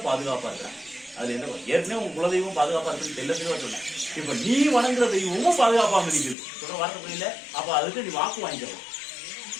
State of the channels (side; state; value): right; drops out; at 6.4 s